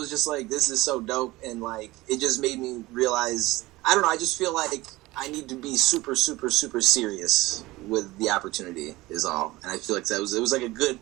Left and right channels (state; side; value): quieter; left; 19.4 dB